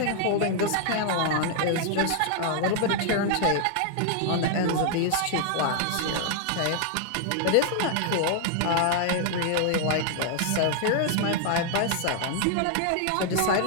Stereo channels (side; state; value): both; different; correlation 0.00